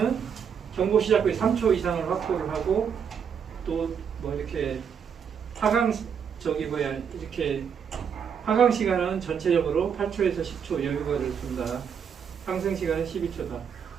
경보 시작 후에 3초 이상을 확보를 하고, 또 뭐 이렇게 하강 이렇게 하강 시간은 전체적으로 8초에서 10초 여유가를 둔다. 상승 시간은 12초다.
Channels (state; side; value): quieter; left; 7.3 dB